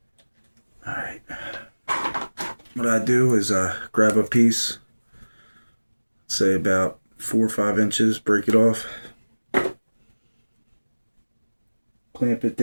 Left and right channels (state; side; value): inverted; both; correlation -1.00